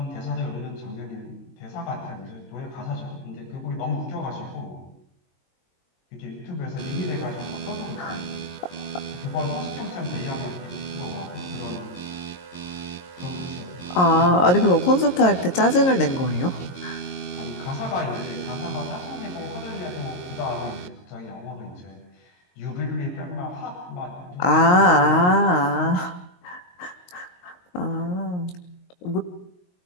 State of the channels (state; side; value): late; right; 22 ms